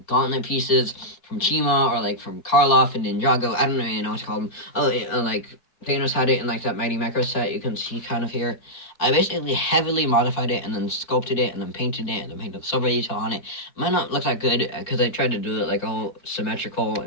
gauntlet pieces from Chima or like from Karloff and Ninjago. I don't even know what to call them. Oh, like Thanos had it in like that Mighty Macro set you can see kind of here. I basically heavily modified it and then sculpted it and then painted it and then painted silver detail on it. Might not look that good because I tried to do it like all symmetrical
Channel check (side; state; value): right; late; 4.3 ms